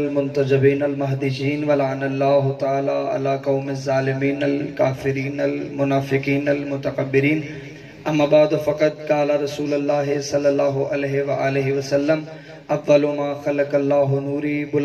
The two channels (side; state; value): both; identical; correlation 1.00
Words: المہدیین ولعن اللہ تعالی علی قوم الظالمین الکافرین المنافقین المتکبرین اما بعد فقط قال رسول اللہ صلی اللہ علیہ وآلہ وسلم اول ما خلق اللہ نوری